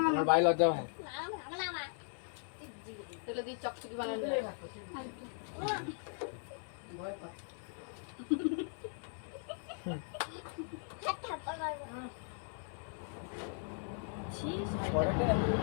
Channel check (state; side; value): silent; right; 52 dB below the other